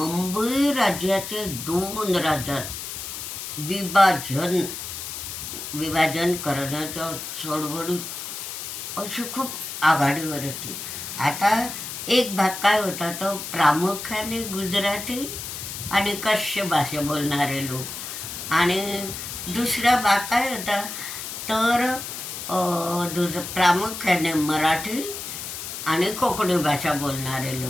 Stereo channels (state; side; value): noise; left; hiss, 7 dB below the sound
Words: राज्याचे 2 राज्यात विभाजन करण्याच्या चळवळीत अशी खूप आघाडीवर होती. आता एक भाग काय होता, तो प्रामुख्याने गुजराती आणि कच्छ भाषा बोलणारे लोक, आणि दुसरा भाग काय होता तर प्रामुख्याने मराठी आणि कोकणी भाषा बोलणारे